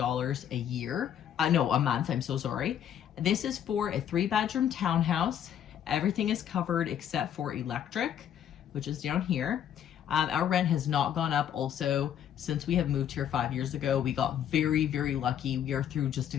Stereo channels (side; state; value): right; quieter; 9.7 dB